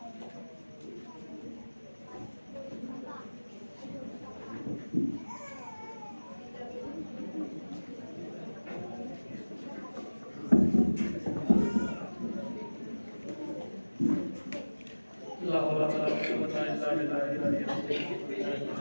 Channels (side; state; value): both; inverted; correlation -1.00